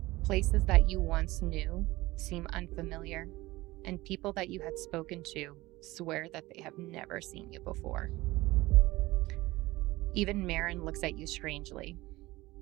Places that you once knew seem unfamiliar, and people that you had spoken to swear that they have never seen you before. Even Marin looks at you strangely,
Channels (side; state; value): left; quieter; 19.5 dB